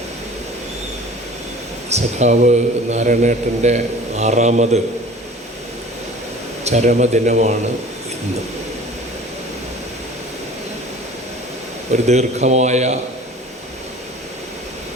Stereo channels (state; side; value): normal; both; correlation 0.44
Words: സഖാവ് നാരായണേട്ടൻ്റെ 6ാമത് ചരമദിനമാണ് ഇന്ന്. ഒരു ദീർഘമായ